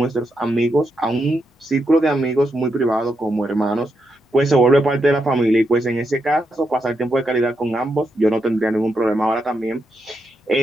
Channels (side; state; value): both; normal; correlation 0.83